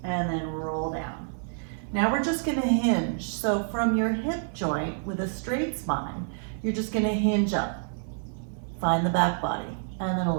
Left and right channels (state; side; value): silent; left; 56 dB below the other